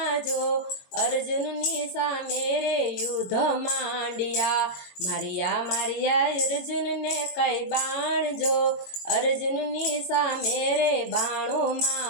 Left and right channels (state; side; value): late; right; 22 ms